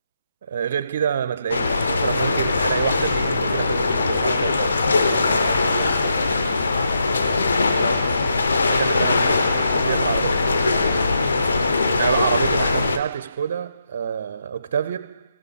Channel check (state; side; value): inverted; both; correlation -0.80